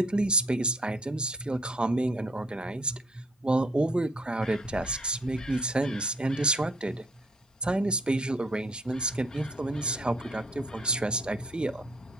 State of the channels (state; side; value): normal; both; correlation 0.62